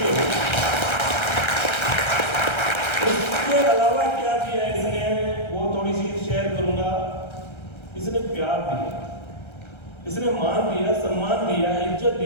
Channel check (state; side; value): late; right; 1.3 ms